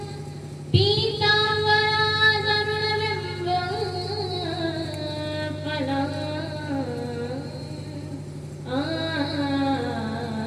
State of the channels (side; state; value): both; identical; correlation 1.00